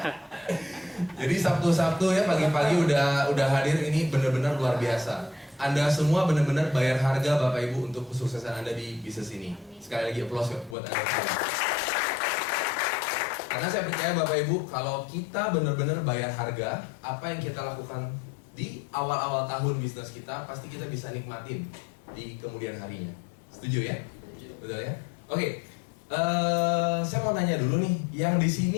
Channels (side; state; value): right; drops out; at 10.8 s